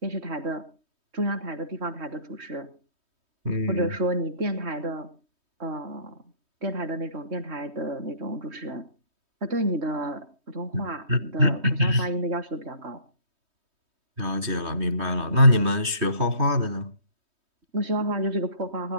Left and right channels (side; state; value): left; late; 3.2 ms